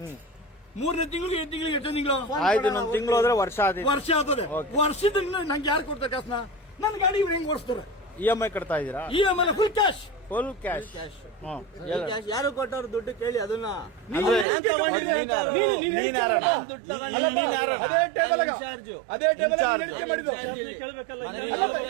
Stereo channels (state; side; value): drops out; left; at 14.5 s